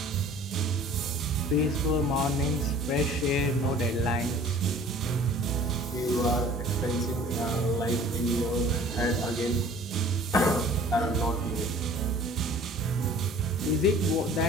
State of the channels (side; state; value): both; normal; correlation 0.49